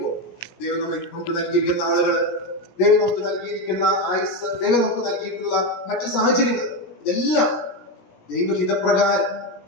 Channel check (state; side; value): late; right; 17 ms